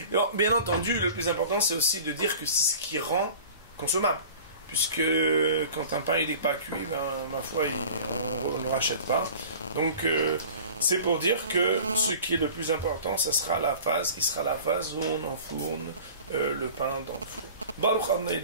Et bon, bien entendu, le plus important, c'est aussi de dire que c'est ce qui rend consommable. Puisque quand un pain il n'est pas cuit, ma foi, on ne le rachète pas. Donc, c'est pour dire que ce qui est le plus important, ça sera la phase où on enfourne le pain dans le four. Baruch Adonai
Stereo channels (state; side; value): inverted; both; correlation -0.42